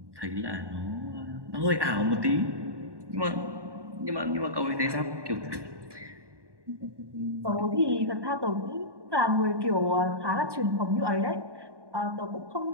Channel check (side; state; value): left; late; 1.2 ms